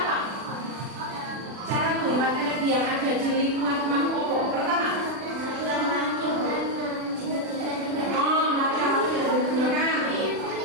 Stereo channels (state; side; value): late; left; 40 ms